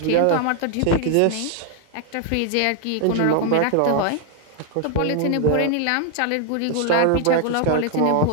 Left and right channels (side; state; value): both; different; correlation 0.00